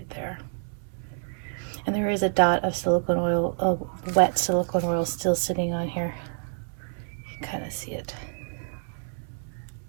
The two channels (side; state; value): left; silent; 60 dB below the other